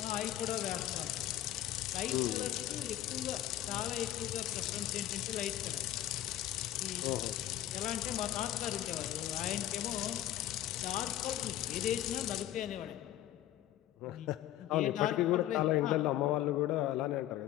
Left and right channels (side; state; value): right; quieter; 13.3 dB